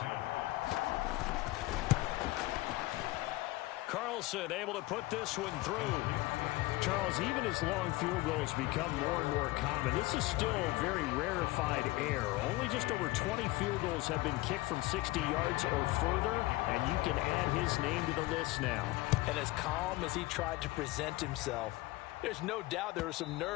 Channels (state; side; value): quieter; right; 19.6 dB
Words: Carlson able to put this one through. Charles, even as long field goals become more and more common, this is still very rarefied air. Only just over 20 field goals have been kicked from 60 yards or further, and you can add his name to the list now. And as calm as he tried to present himself, there's no doubt there were some